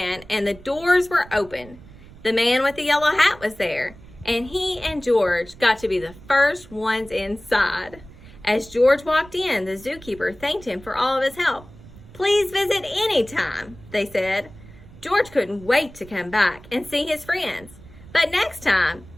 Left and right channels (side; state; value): right; noise; rumble, 20 dB below the sound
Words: and the doors were open. The man with the yellow hat was there, and he and George got to be the first ones inside. As George walked in, the zookeeper thanked him for all of his help. "Please visit any time," they said. George couldn't wait to come back and see his friends. But next time,